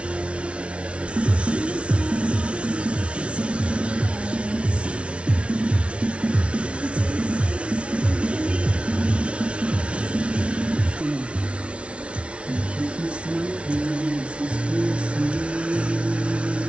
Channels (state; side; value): late; left; 0.060 ms